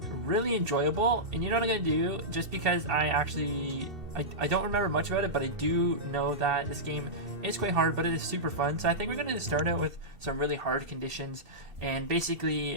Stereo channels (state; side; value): late; left; 2.7 ms